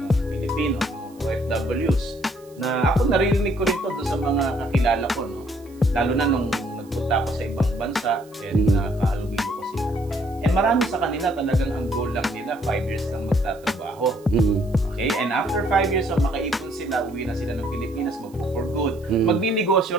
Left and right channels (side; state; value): right; noise; hiss, 28 dB below the sound